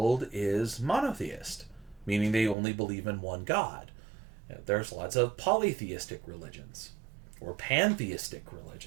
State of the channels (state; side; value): drops out; left; at 2.6 s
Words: is monotheist, meaning they only believe in one God. There's lots of polytheistic religions or pantheistic